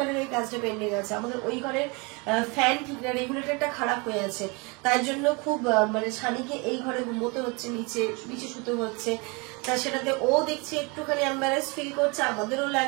এই কাজটা পেন্ডিং আছে আমাদের। ওই ঘরের ফ্যান ঠিক না, রেগুলেটরটা খারাপ হয়ে আছে, তাই জন্য খুব মানে ছানিকে এই ঘরে ঘুমোতে হচ্ছে, নিচে শুতে হচ্ছে। তা সেটাতে ও দেখছি একটুখানি এম্বারেস ফিল করছে, আমাদেরও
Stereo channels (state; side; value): quieter; left; 29.0 dB